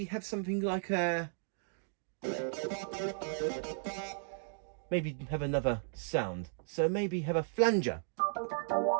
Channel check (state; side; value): silent; left; digital silence